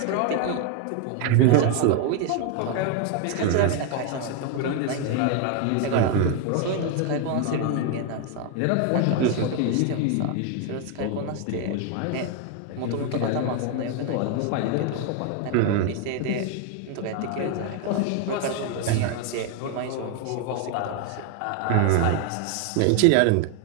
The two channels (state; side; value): different; both; correlation 0.01